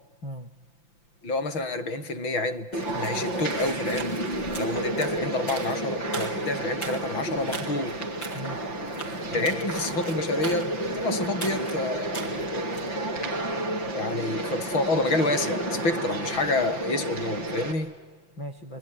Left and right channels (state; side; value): late; right; 5.9 ms